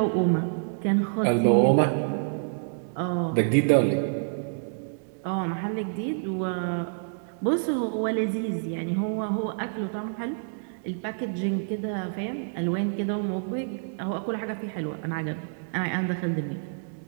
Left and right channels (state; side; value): silent; left; digital silence